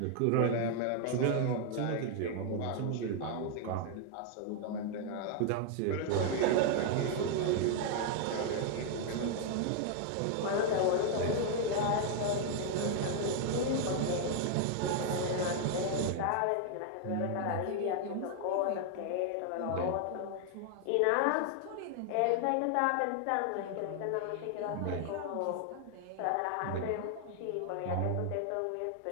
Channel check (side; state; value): both; different; correlation 0.00